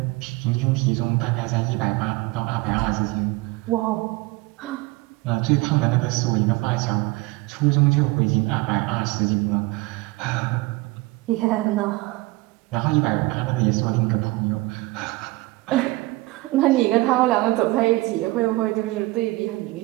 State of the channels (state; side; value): quieter; left; 21.2 dB